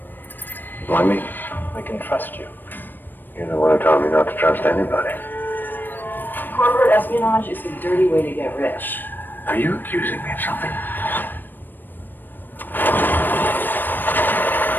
Why me? They can trust you. You're the one who told me not to trust anybody. Corporate espionage is a dirty way to get rich. Are you accusing me of something?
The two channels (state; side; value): late; right; 0.092 ms